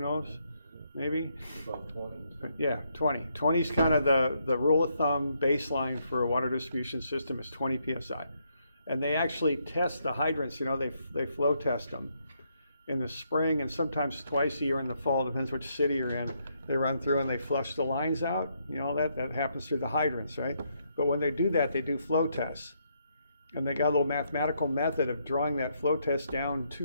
Maybe? About 20. Yeah, 20. 20 is kind of the rule of thumb baseline for a water distribution system is 20 PSI. And they actually test the hydrants, you know, they flow test them in the spring and sometimes twice a year in the fall, depends which city you're in. They run through and they flush the lines out. You know, that happens through the hydrants, right? But when they do that, they do flow tests. And they got a little mathematical method of drawing that flow test down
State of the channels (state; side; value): inverted; both; correlation -0.75